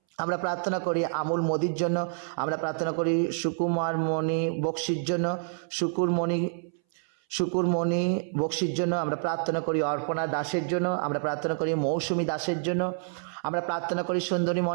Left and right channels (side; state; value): left; silent; 59 dB below the other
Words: আমরা প্রার্থনা করি আমুল মোদির জন্য, আমরা প্রার্থনা করি সুকুমার মণি বক্সির জন্য, শুকুরমণি বক্সির জন্য আমরা প্রার্থনা করি, অর্পণা দাসের জন্য আমরা প্রার্থনা করি, মৌসুমী দাসের জন্য আমরা প্রার্থনা করি, সুন্দরী